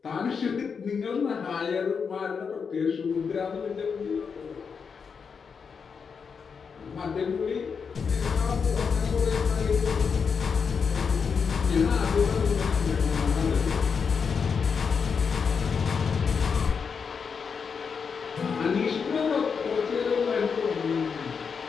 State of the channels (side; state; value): right; quieter; 5.9 dB